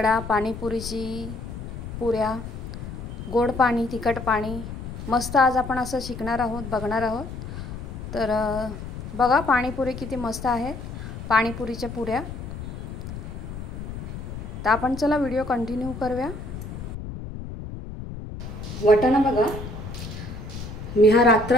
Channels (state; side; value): noise; left; rumble, 9 dB below the sound